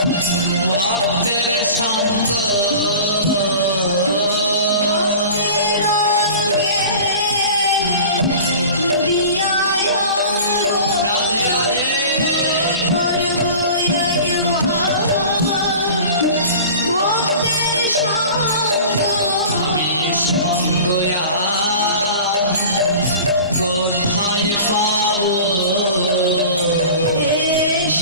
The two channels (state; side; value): inverted; both; correlation -0.39